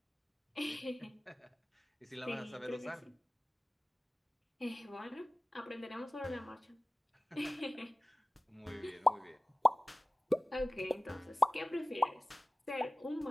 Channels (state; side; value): normal; both; correlation 0.97